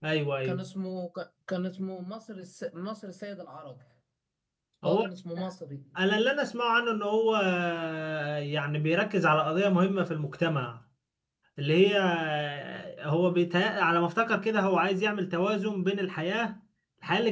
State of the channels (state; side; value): identical; both; correlation 1.00